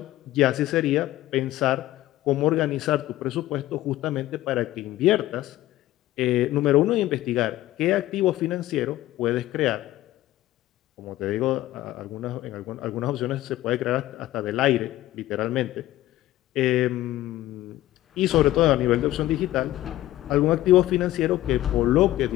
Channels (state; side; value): quieter; right; 15.2 dB